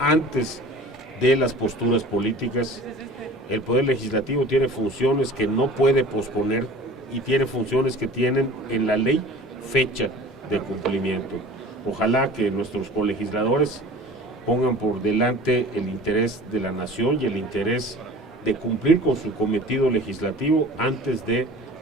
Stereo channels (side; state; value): both; normal; correlation 0.43